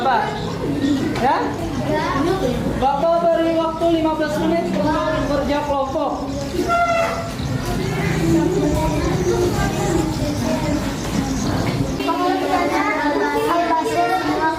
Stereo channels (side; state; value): both; identical; correlation 1.00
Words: Ya, Bapak beri waktu 15 menit untuk kerja kelompok.